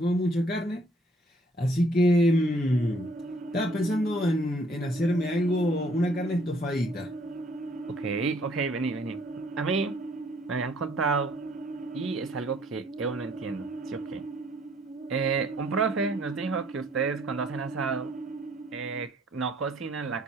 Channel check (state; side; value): normal; both; correlation 0.63